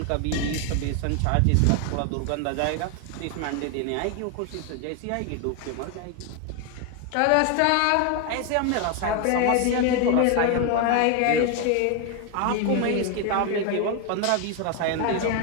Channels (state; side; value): different; both; correlation 0.01